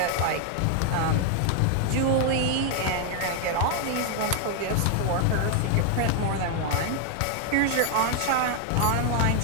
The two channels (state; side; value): different; both; correlation 0.00